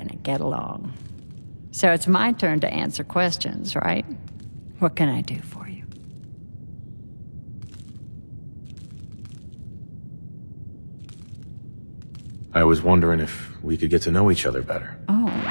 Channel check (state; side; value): inverted; both; correlation -1.00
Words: get along. So it's my turn to answer questions, right? What can I do for you? I was wondering if we could get to know each other better. Oh,